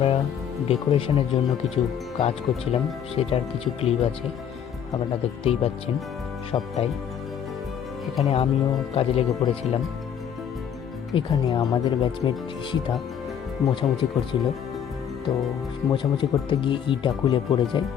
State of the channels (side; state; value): right; quieter; 8.5 dB